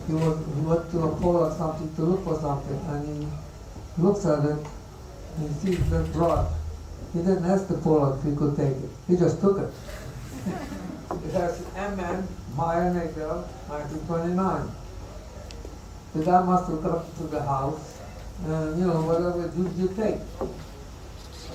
He went to a pole or something to look for something, and he looks at it, and he sees that brush. He didn't ask the Pollock if he could take it. He just took it. It has MN, Meyer Nagel, 1929. The guy must have got to the house, and whatever you take.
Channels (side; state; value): both; identical; correlation 1.00